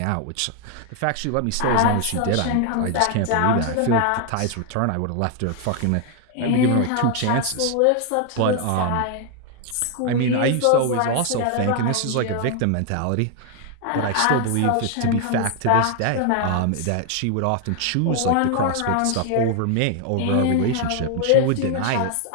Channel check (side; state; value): both; different; correlation 0.00